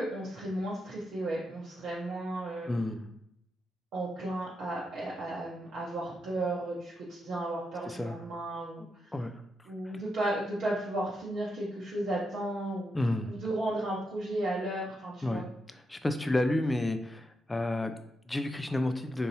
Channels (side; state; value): both; normal; correlation 0.84